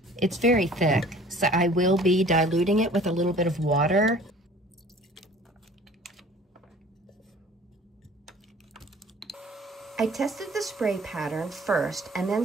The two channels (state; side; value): normal; both; correlation 0.49